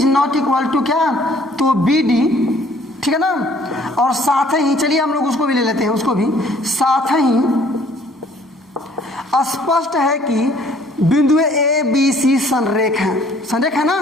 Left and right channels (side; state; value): both; normal; correlation 0.58